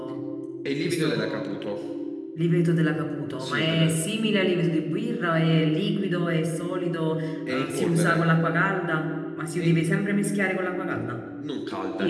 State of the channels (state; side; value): identical; both; correlation 1.00